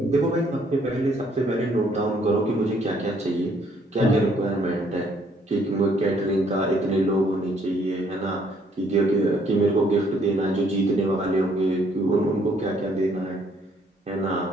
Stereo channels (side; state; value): both; normal; correlation 0.65